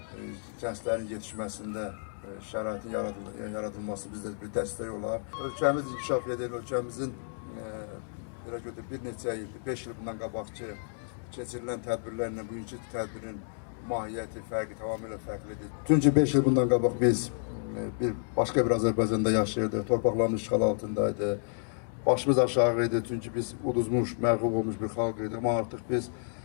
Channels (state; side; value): silent; right; digital silence